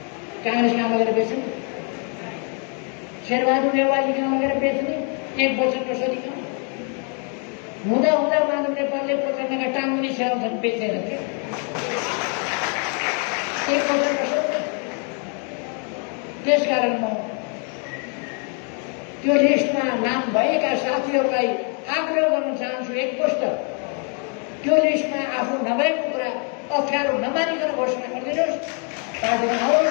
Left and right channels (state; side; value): quieter; right; 39.6 dB